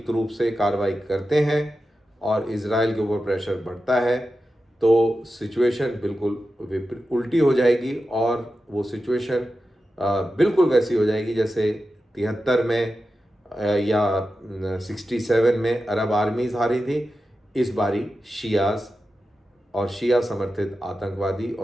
रूप से कार्रवाई करते हैं और इजराइल के ऊपर प्रेशर बढ़ता है तो सिचुएशन बिल्कुल उल्टी हो जाएगी और वो सिचुएशन बिल्कुल वैसी हो जाएगी जैसे 73 में या 67 में अरब आर्मीज़ हारी थी। इस बारी शियाज और शिया समर्थित आतंकवादी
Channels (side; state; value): both; normal; correlation 0.92